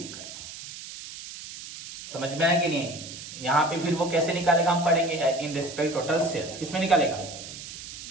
पाओ। समझ में आया कि नहीं? यहाँ पे फिर वो कैसे निकालेगा हम पढ़ेंगे, इन रिस्पेक्ट टोटल सेल्स। किसमें निकालेगा?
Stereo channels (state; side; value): noise; right; hiss, 12 dB below the sound